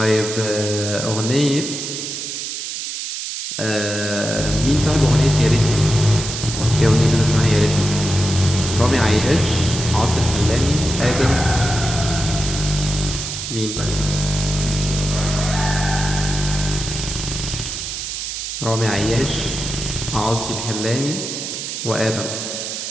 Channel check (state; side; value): noise; right; hiss, 5 dB below the sound